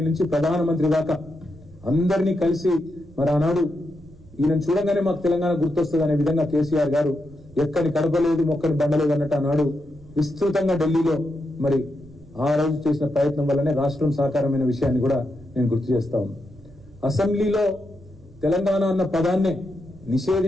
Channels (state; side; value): noise; right; rumble, 23 dB below the sound